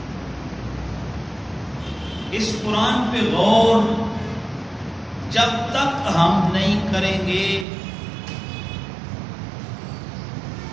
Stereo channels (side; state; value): left; drops out; at 7.7 s